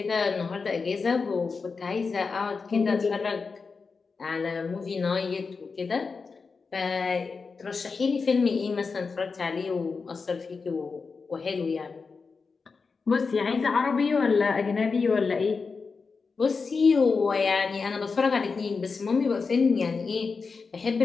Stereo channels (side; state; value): right; quieter; 4.7 dB